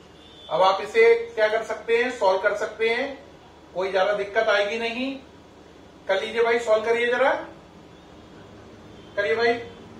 अब आप इसे क्या कर सकते हैं? सॉल्व कर सकते हैं, कोई ज्यादा दिक्कत आएगी नहीं। कर लीजिए भाई, सॉल्व करिए जरा, करिए भाई,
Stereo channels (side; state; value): both; identical; correlation 1.00